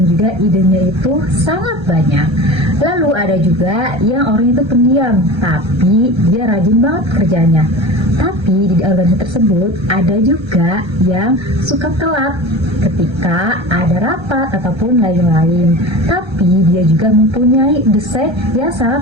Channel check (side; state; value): left; late; 1.3 ms